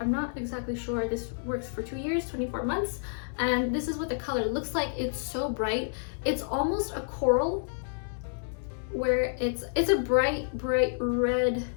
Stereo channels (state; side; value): silent; right; digital silence